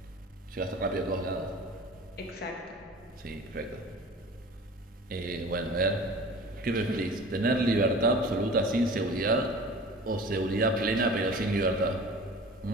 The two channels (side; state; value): both; normal; correlation 0.41